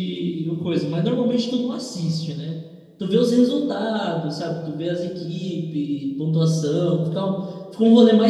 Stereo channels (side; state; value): both; identical; correlation 1.00